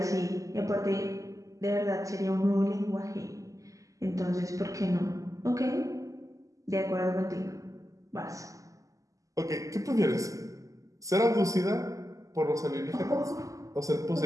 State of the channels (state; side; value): late; left; 0.16 ms